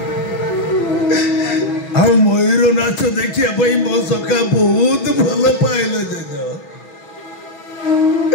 आ मयूर नाच देखिया भाई मो सखा बहुत भल पाइल जेज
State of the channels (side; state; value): right; late; 6.3 ms